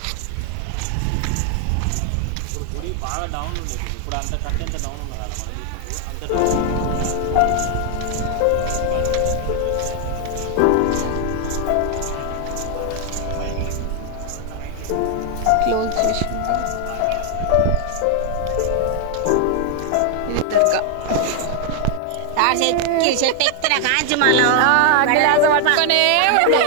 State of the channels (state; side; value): different; both; correlation 0.00